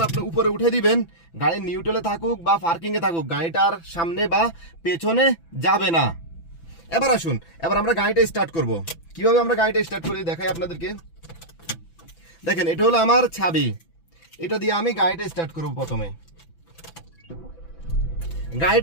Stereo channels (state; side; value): late; right; 6.0 ms